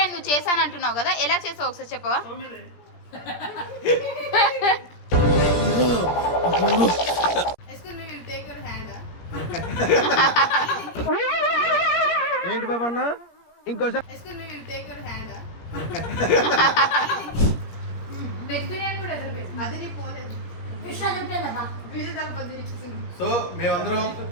నువ్వు చేశాను అంటున్నావు కదా, ఎలా చేసావు ఒకసారి చెప్పవా? ఏంటి బాబా అన్న ఇంకోసారి సో మేమందరం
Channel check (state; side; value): late; right; 17 ms